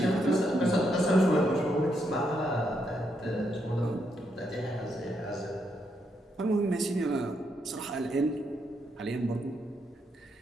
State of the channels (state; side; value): normal; both; correlation 0.78